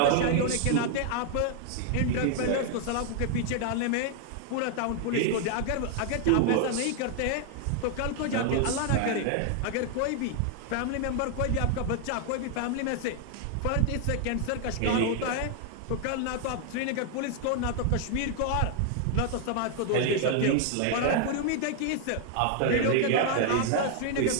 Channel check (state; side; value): different; both; correlation 0.00